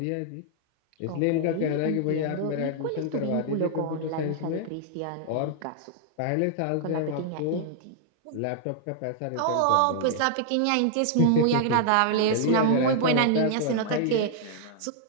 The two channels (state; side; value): different; both; correlation -0.01